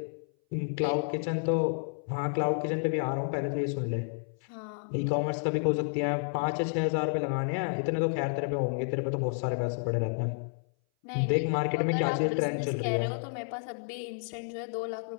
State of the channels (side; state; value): right; silent; 57 dB below the other